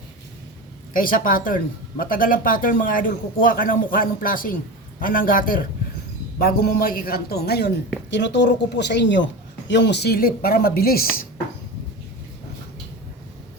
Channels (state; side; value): normal; both; correlation 0.26